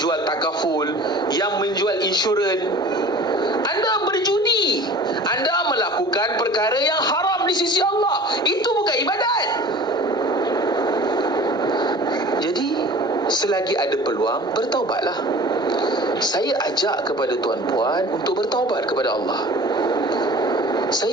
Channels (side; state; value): both; normal; correlation 0.42